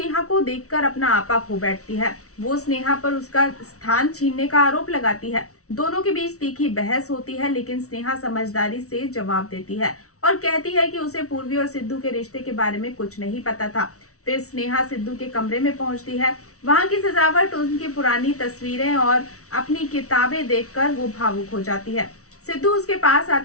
को देखकर अपना आपा खो बैठती है। वो स्नेहा पर उसका स्थान छीनने का आरोप लगाती है। दोनों के बीच तीखी बहस होती है, लेकिन स्नेहा समझदारी से जवाब देती है और कहती है कि उसे पूर्वी और सिद्धू के रिश्ते के बारे में कुछ नहीं पता था। फिर स्नेहा सिद्धू के कमरे में पहुंचती है। वहां की सजावट, उनकी पुरानी तस्वीरें और अपनी किताबें देखकर वो भावुक हो जाती है। सिद्धू उसके पास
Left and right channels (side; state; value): right; late; 0.64 ms